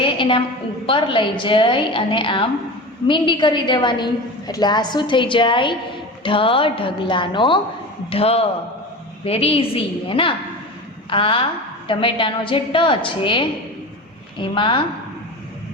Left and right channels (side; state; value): both; normal; correlation 0.30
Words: એને આમ ઉપર લઈ જઈ અને આમ મીંડી કરી દેવાની, એટલે આ શું થઈ જાય? ઢ ઢગલાનો ઢ. વેરી ઇઝી હે ના? આ ટમેટાનો જે ટ છે એમાં